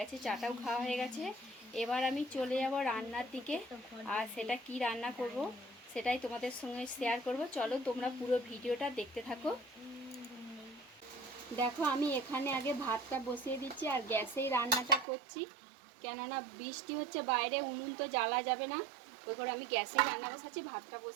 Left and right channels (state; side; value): drops out; left; at 15.1 s